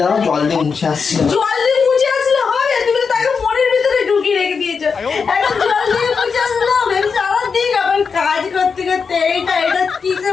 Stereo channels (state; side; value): quieter; right; 5.6 dB